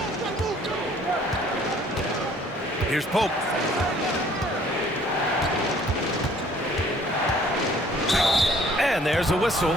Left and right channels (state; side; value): normal; both; correlation 0.57